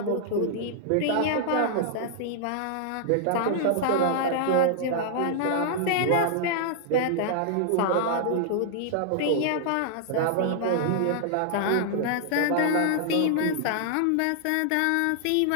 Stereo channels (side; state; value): both; different; correlation -0.01